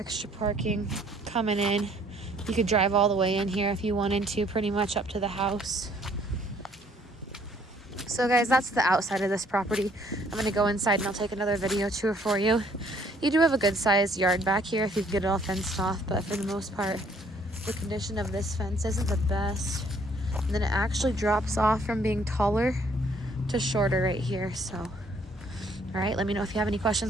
parking coming in. You could drive all the way in here if you wanted to, pretty much up to the house. So guys, that's the outside of this property. I'm gonna go inside and I'll take another video tour for you. You do have a good sized yard back here if you can get it all fenced off, but for the most part, the condition of this fence isn't the best. And then it actually drops off from being taller to shorter right here. So, all right, let me know if you have any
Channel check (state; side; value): normal; both; correlation 0.62